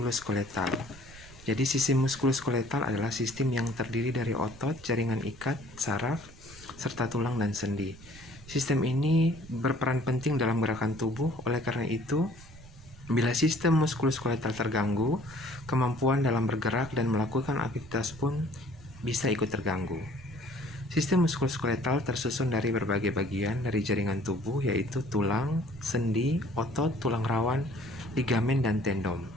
Jadi sistem muskuloskeletal adalah sistem yang terdiri dari otot, jaringan ikat, saraf, serta tulang dan sendi. Sistem ini berperan penting dalam gerakan tubuh. Oleh karena itu, bila sistem muskuloskeletal terganggu, kemampuan dalam bergerak dan melakukan aktivitas pun bisa ikut terganggu. Sistem muskuloskeletal tersusun dari berbagai bagian dari jaringan tubuh, yaitu tulang, sendi, otot, tulang rawan, ligamen, dan tendon.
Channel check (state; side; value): noise; right; rumble, 19 dB below the sound